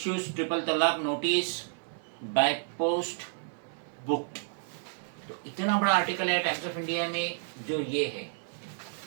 ट्रिपल तलाक नोटिस बाय पोस्ट बुक्ड। तो इतना बड़ा आर्टिकल है टाइम्स ऑफ इंडिया में जो ये है,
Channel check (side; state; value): left; silent; digital silence